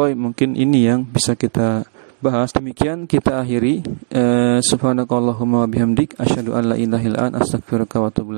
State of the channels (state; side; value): silent; left; digital silence